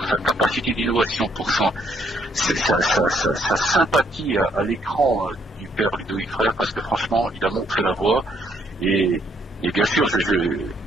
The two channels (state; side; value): normal; both; correlation 0.70